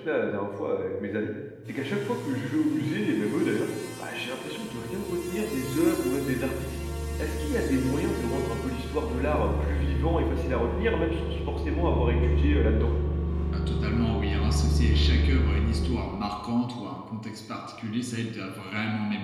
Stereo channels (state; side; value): identical; both; correlation 1.00